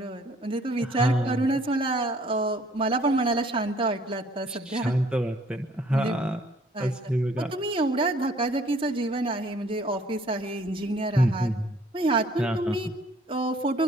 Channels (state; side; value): normal; both; correlation 0.59